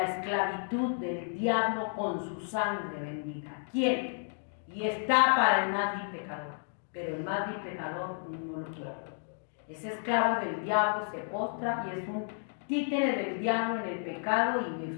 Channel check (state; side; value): silent; right; digital silence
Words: esclavitud del diablo con su sangre bendita? ¿Quién? Y está para el más vil pecador, pero el más vil pecador no lo quiere. Es esclavo del diablo, se postra y es un títere del diablo en el pecado, y